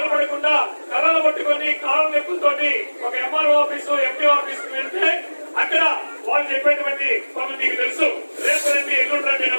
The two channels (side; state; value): both; inverted; correlation -1.00